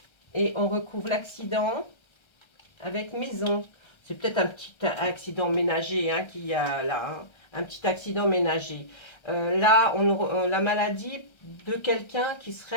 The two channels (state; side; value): late; right; 1.3 ms